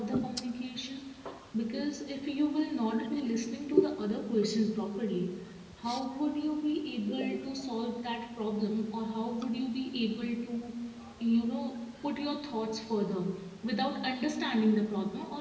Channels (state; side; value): identical; both; correlation 1.00